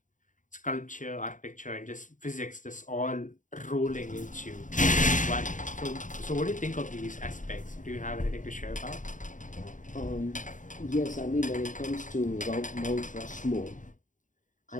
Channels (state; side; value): late; right; 0.37 ms